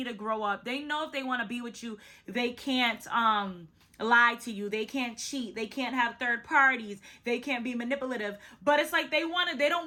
to grow up. They know if they want to be with you, they can't lie to you, they can't cheat, they can't have third parties, they can't be manipulative, but it's like they don't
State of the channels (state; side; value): identical; both; correlation 1.00